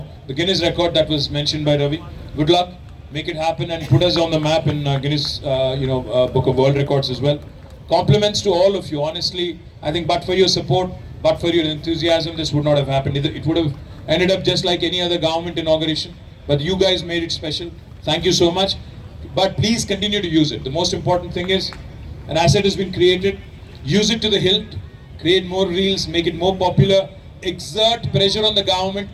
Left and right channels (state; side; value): identical; both; correlation 1.00